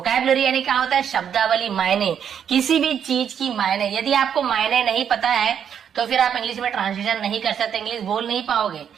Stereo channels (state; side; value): quieter; left; 8.3 dB